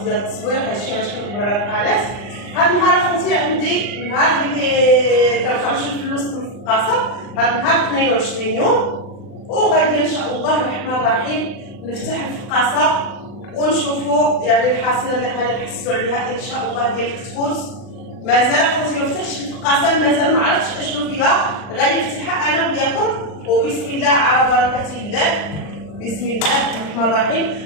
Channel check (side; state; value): right; late; 39 ms